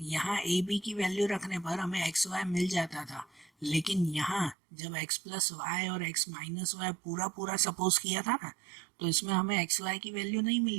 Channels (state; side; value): drops out; left; at 4.5 s